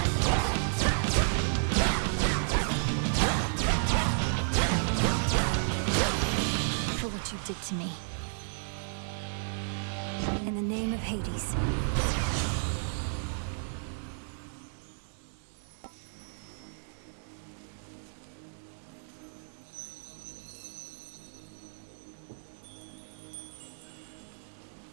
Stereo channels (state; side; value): silent; left; digital silence